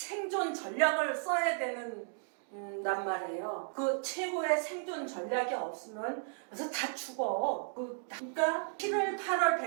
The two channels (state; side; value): silent; left; digital silence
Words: 전략을 써야 되는 난 말이에요. 그 최고의 생존 전략이 없으면 그래서 다 죽어. 그러니까 7월, 8월